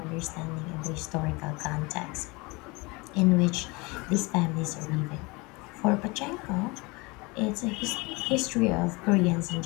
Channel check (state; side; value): quieter; right; 26.0 dB